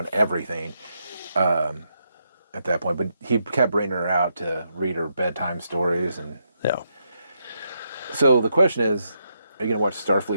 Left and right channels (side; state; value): both; inverted; correlation -0.80